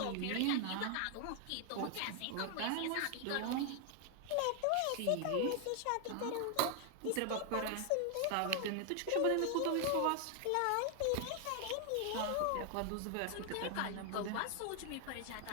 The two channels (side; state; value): both; different; correlation 0.00